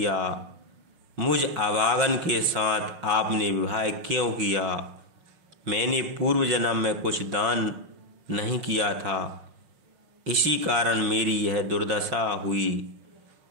मुझ अभागन के साथ आपने विवाह क्यों किया? मैंने पूर्व जन्म में कुछ दान नहीं किया था, इसी कारण मेरी यह दुर्दशा हुई।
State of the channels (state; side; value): late; left; 5.5 ms